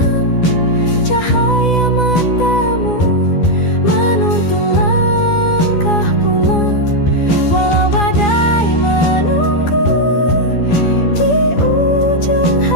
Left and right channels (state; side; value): late; right; 12 ms